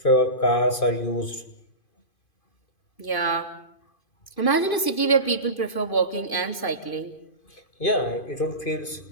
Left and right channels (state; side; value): late; right; 2.5 ms